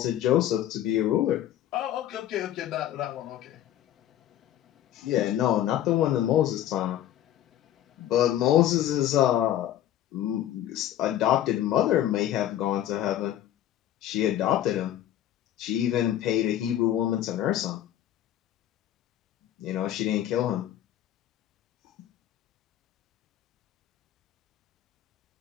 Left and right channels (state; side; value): quieter; right; 12.1 dB